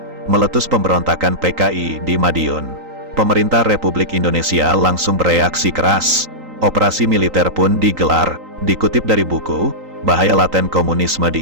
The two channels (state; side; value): late; left; 3.9 ms